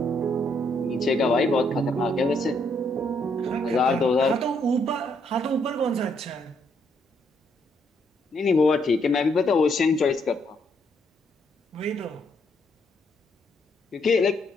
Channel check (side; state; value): both; normal; correlation 0.73